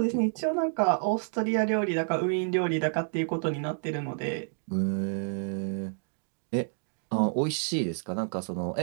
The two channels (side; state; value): left; silent; digital silence